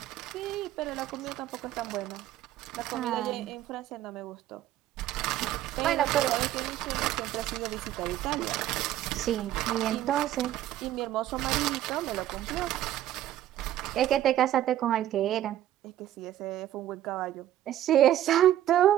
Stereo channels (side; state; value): left; quieter; 12.7 dB